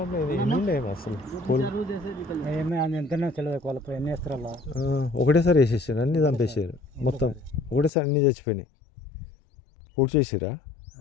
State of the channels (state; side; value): drops out; right; at 7.9 s